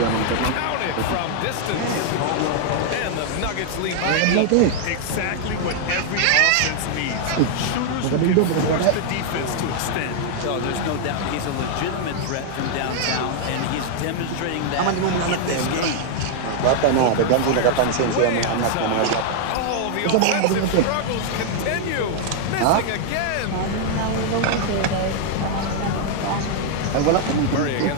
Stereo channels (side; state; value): both; different; correlation 0.00